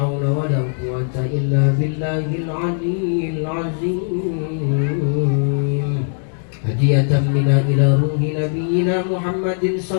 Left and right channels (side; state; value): right; silent; digital silence